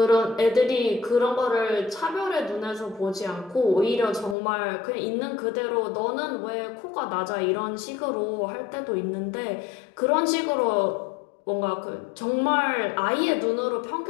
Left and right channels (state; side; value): drops out; right; at 4.4 s